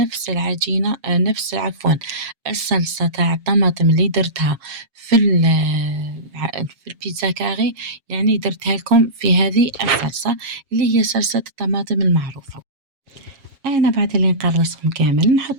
العجينة، نفس عفوا الصلصة تاع الطماطم اللي درتها في البيتزا كاري، يعني درتها لكم في هذه الصلصة اللي هي صلصة الطماطم المعروفة. أنا بعد اللي نقرصهم كامل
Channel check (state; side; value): late; left; 7.3 ms